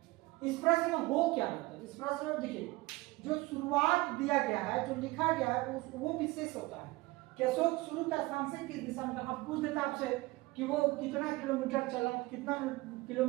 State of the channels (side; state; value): left; quieter; 21.3 dB